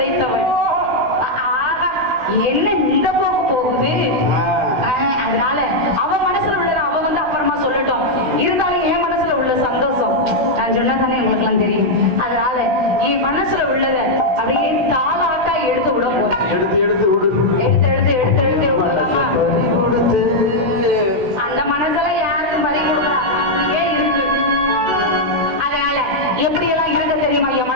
என்ன இந்த போக்கு போகுது. அதனால அவ மனசுல உள்ளத அவ வந்து அப்புறமா சொல்லட்டும். இருந்தாலும் என் மனசுல உள்ள சந்தோஷம் நான் சொன்னதானே உங்களுக்கு எல்லாம் தெரியும். அதனால என் மனசுல உள்ளத அப்படியே தாளாட்டா எடுத்து விட போறேன். எடுத்து எடுத்து விடு. எடுத்து எடுத்து எடுத்து எடுத்து விடலாமா? அந்த மனசெல்லாம் யாருக்கும் பறி கொடுக்கலாம். அப்படியே இருக்கு. அதனால எப்படி எல்லாம் இருக்க தெரியுமா என்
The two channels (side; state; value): left; late; 16 ms